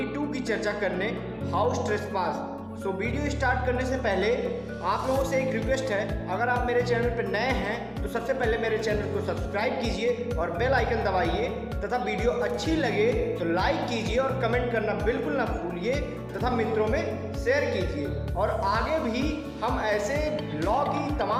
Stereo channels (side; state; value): both; identical; correlation 1.00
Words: की चर्चा करने, हाउस ट्रेसपास। वीडियो स्टार्ट करने से पहले आप लोगों से एक रिक्वेस्ट है, अगर आप मेरे चैनल पर नए हैं तो सबसे पहले मेरे चैनल को सब्सक्राइब कीजिए और बेल आइकन दबाइए तथा वीडियो अच्छी लगे तो लाइक कीजिए और कमेंट करना बिल्कुल ना भूलिए तथा मित्रों में शेयर कीजिए। और आगे भी हम ऐसे लॉ की